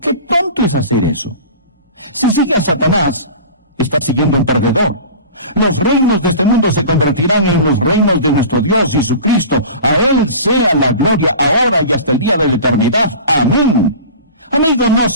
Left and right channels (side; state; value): both; inverted; correlation -0.37